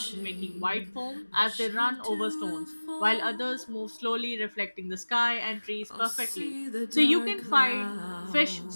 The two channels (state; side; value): inverted; both; correlation -1.00